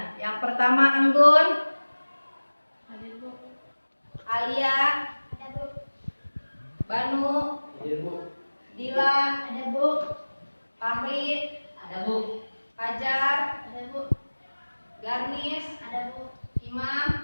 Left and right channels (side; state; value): both; inverted; correlation -1.00